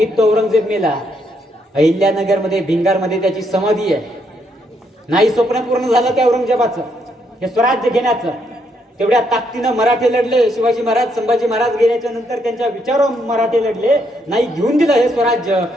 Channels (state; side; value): normal; both; correlation 0.75